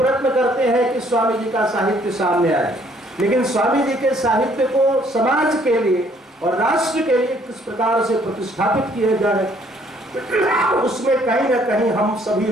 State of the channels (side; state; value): both; normal; correlation 0.63